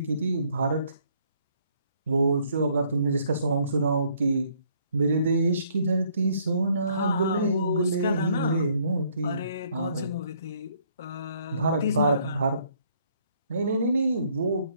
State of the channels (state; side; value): inverted; both; correlation -0.66